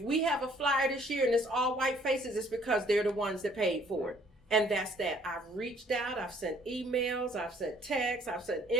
we have a flyer this year and it's all white faces, it's because they're the ones that paid for it. And that's that. I've reached out, I've sent emails, I've sent texts, I've sent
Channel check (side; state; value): both; normal; correlation 0.60